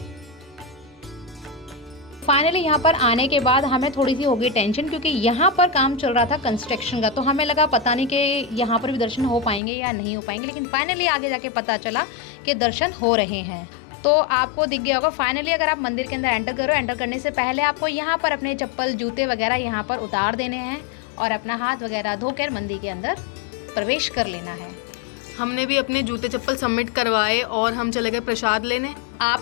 फाइनली यहाँ पर आने के बाद हमें थोड़ी सी हो गई टेंशन, क्योंकि यहाँ पर काम चल रहा था कंस्ट्रक्शन का। तो हमें लगा पता नहीं कि यहाँ पर भी दर्शन हो पाएंगे या नहीं हो पाएंगे, लेकिन फाइनली आगे जाके पता चला कि दर्शन हो रहे हैं। तो आपको दिख गया होगा फाइनली, अगर आप मंदिर के अंदर एंटर करो, एंटर करने से पहले आपको यहाँ पर अपने चप्पल जूते वगैरह यहाँ पर उतार देने हैं और अपना हाथ वगैरह धोकर मंदिर के अंदर प्रवेश कर लेना है। हमने भी अपने जूते चप्पल सबमिट करवाए और हम चले गए प्रसाद लेने। आप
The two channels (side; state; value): right; drops out; at 9.6 s